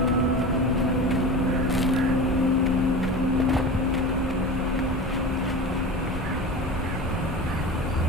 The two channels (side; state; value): both; normal; correlation 0.31